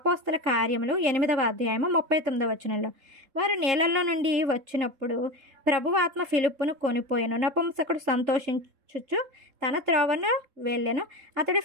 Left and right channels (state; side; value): late; left; 3.7 ms